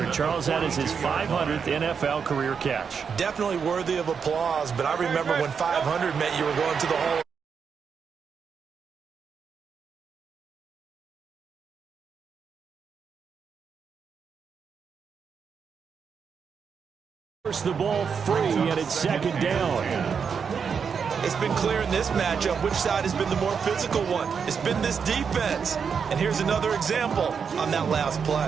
Charles, that is his 500th NFL career catch. Definitely worthy of applause, but I remember when 500 meant you were going to the Hall. The ball free, and it's 2nd down. It's been clear in this matchup which side has been the more physical one. It's been this defense. And here's another example on that last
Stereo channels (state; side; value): quieter; left; 6.4 dB